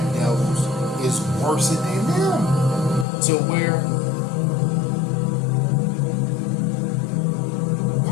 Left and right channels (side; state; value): right; drops out; at 3.1 s